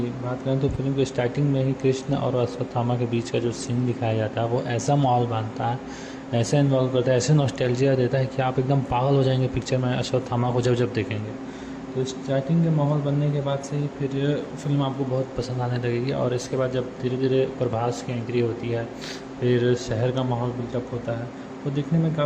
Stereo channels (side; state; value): both; identical; correlation 1.00